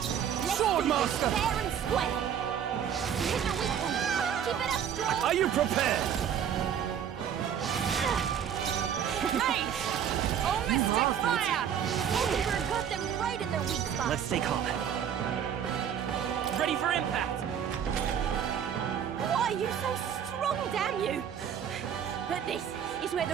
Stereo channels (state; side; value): quieter; left; 8.8 dB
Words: Swordmaster! Fair and square. Hit the weak one. Keep it up, strong. Are you prepared? Hey! Oh, mystic fire! Everyone got them right in their weak spot. Let's stay calm. Ready for impact! Why are you so strong, damn you? But this is where